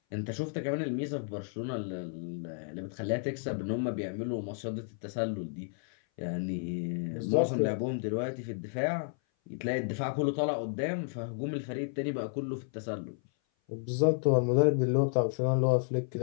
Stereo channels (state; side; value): silent; right; 56 dB below the other